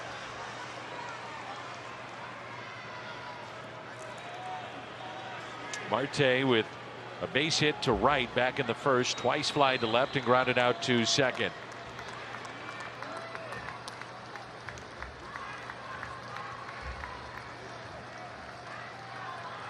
Marte with a base hit to right back in the first, twice fly to left and grounded out to second.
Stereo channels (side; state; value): both; identical; correlation 1.00